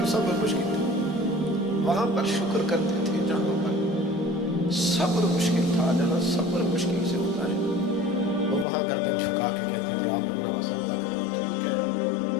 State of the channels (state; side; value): drops out; right; at 8.7 s